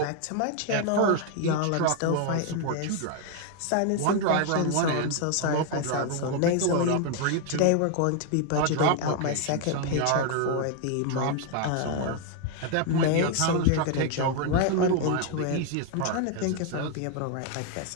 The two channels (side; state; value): both; different; correlation 0.01